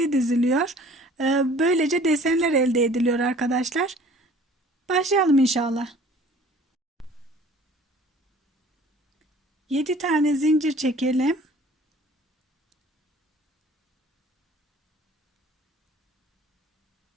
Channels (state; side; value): normal; both; correlation 0.50